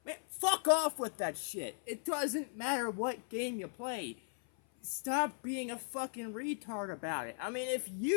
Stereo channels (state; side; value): silent; right; 53 dB below the other